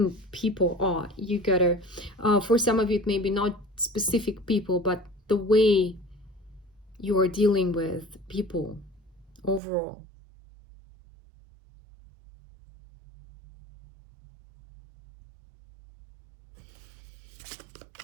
people are. You gotta, for some of you, it may be not specific people, but the way you are dealing with people overall.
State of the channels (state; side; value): drops out; left; at 9.6 s